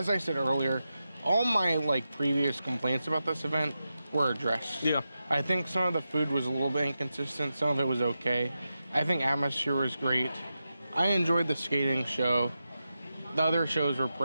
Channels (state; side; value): inverted; both; correlation -0.90